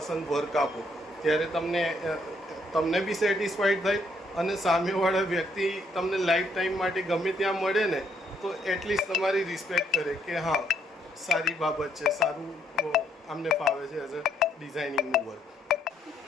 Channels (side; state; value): both; normal; correlation 0.71